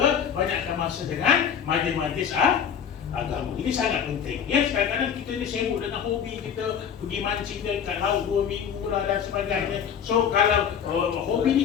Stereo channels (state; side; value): quieter; right; 7.9 dB